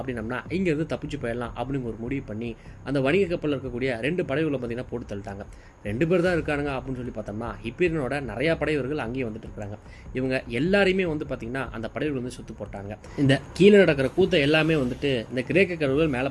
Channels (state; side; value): identical; both; correlation 1.00